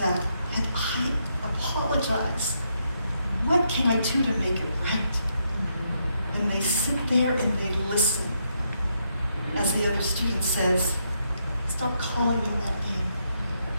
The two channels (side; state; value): both; inverted; correlation -0.78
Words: and I apologize. What can I do to make it right? And they sit there and they listen as the other student says, stop calling me that name.